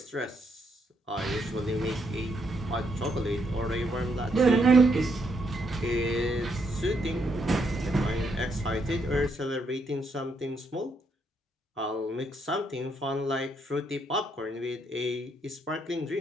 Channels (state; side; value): normal; both; correlation 0.75